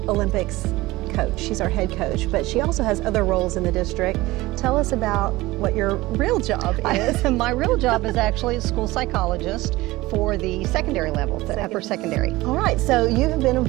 Olympics coach. She's our head coach, but she also has other roles in the district. Tell us about what your real job is. My real job is actually a school psychologist for the secondary level, the upper secondary. All right, so you have been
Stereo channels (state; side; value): quieter; left; 19.3 dB